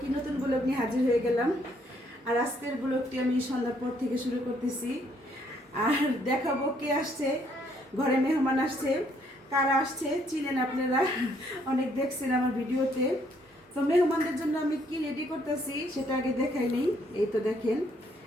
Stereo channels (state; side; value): normal; both; correlation 0.68